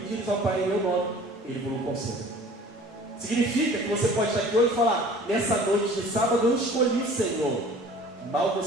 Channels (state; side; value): normal; both; correlation 0.47